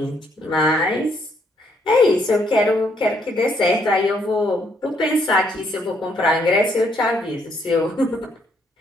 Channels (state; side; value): normal; both; correlation 0.71